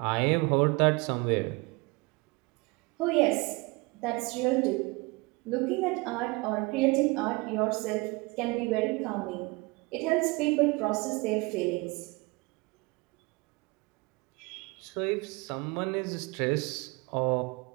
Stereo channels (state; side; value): quieter; left; 25.8 dB